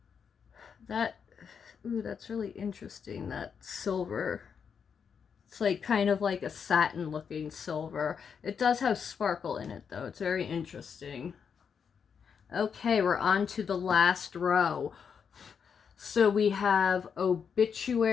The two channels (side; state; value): right; quieter; 6.7 dB